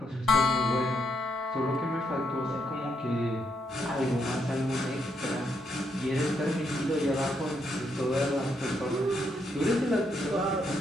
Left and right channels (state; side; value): normal; both; correlation 0.77